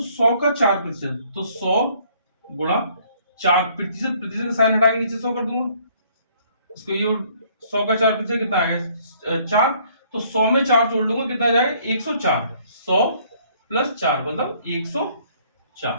100 का 4%, तो 100 गुणा 4%, प्रतिशत का साइन हटा के नीचे 100 कर दूंगा, इसको ये 100 का 4% कितना आ गया 4, तो 100 में 4 जोड़ लूंगा कितना आ जाएगा 104, 100 प्लस 4 मतलब 104,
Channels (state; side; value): inverted; both; correlation -0.62